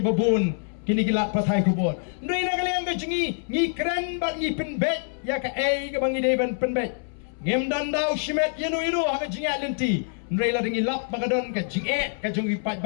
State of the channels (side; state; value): right; silent; 61 dB below the other